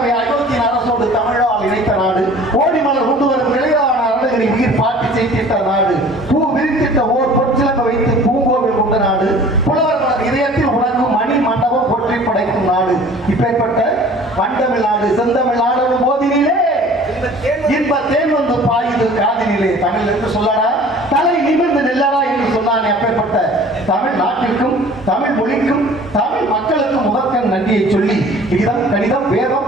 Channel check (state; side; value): normal; both; correlation 0.47